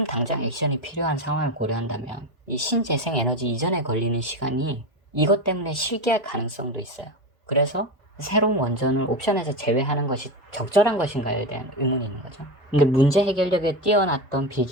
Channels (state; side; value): normal; both; correlation 0.19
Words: 당장 액션이 필요한 상황을 고려한다면 이 신재생에너지 이전에 걸리는 시간이 이것 때문에 실기할 가능성도 있어요. 그래서 새로운 원전을 옵션에서 제외하는 것이 적절한 것인가에 대한 의문이 있는 거죠. 근데 문제 해결력에 뛰어났던 빌